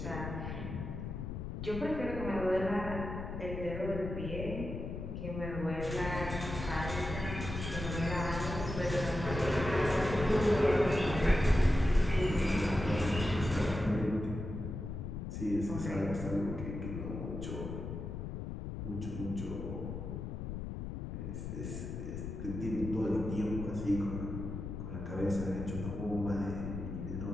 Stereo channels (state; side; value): noise; left; rumble, 6 dB below the sound